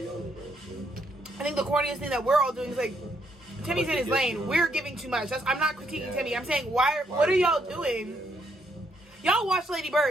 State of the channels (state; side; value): normal; both; correlation 0.73